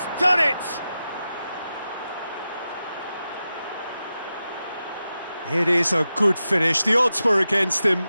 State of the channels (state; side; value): inverted; both; correlation -0.91